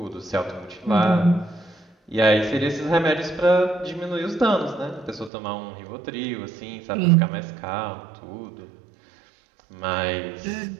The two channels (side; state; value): left; drops out; at 5.3 s